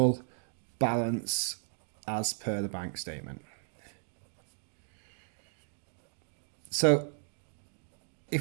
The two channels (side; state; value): left; silent; digital silence